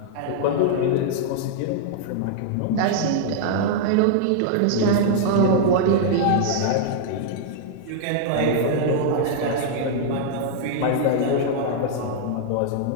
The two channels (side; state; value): both; different; correlation -0.01